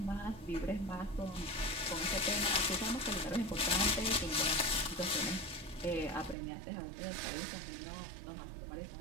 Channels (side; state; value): left; drops out; at 6.4 s